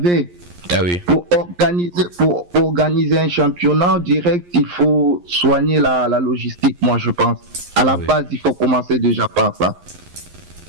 Ah oui. Pour organiser un championnat direct, il faut soigner la logistique, moi je pense. À la base, il faut commencer déjà par ça.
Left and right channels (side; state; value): left; late; 11 ms